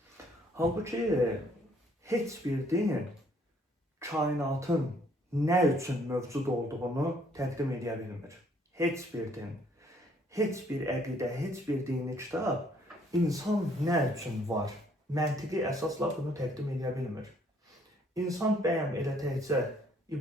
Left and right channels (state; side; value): normal; both; correlation 0.64